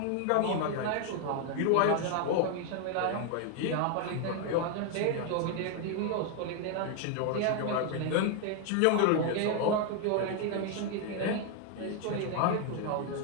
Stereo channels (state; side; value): different; both; correlation 0.00